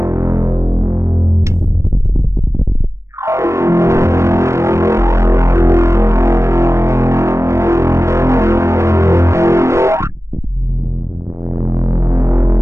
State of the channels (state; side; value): late; left; 0.14 ms